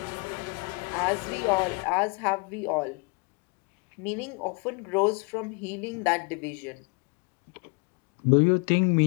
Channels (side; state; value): right; quieter; 30.9 dB